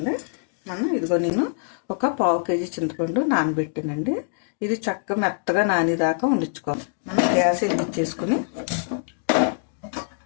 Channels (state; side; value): silent; right; digital silence